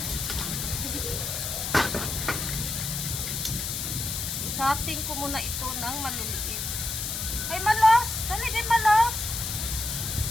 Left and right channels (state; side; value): noise; left; hiss, 3 dB below the sound